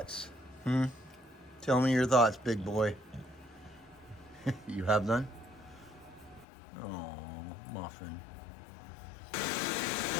Tell me your thoughts, big boy. You have none? Oh, muffin.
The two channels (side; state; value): right; drops out; at 6.5 s